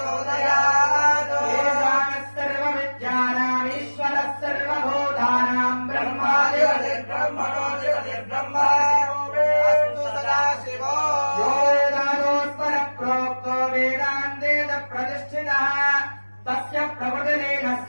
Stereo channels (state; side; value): inverted; both; correlation -1.00